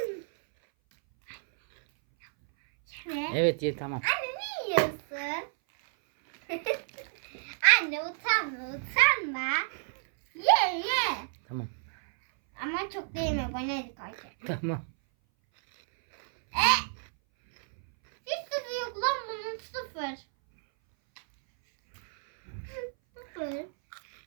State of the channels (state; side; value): silent; left; 58 dB below the other